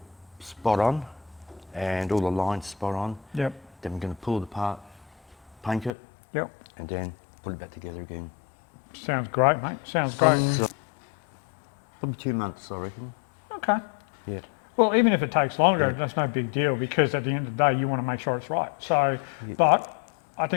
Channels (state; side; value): drops out; right; at 6.0 s